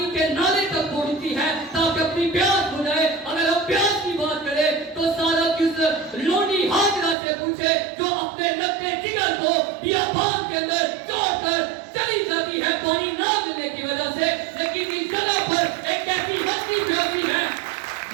کے نالے تک پہنچتی ہے تاکہ اپنی پیاس بجھائے. اگر ہم پیاس کی بات کریں تو سارا کس لونڈی ہاجرہ سے پوچھے جو اپنے نقطے جگر کو بیابان کے اندر چھوڑ کر چلی جاتی ہے پانی نہ ملنے کی وجہ سے، لیکن اس جگہ پر ایک ایسی ہستی پیاسی ہے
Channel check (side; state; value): left; drops out; at 7.2 s